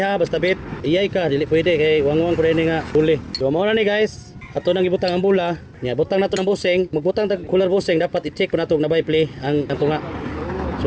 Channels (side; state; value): both; identical; correlation 1.00